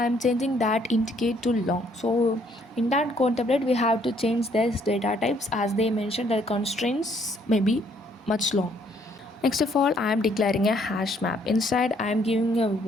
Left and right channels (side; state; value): both; normal; correlation 0.66